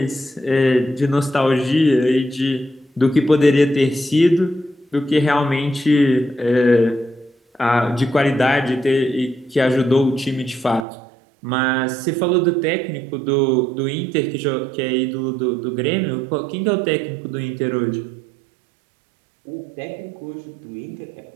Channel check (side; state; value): left; drops out; at 10.9 s